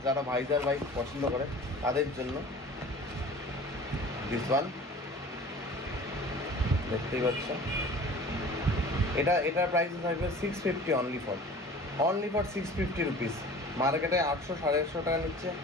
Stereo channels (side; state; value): both; normal; correlation 0.43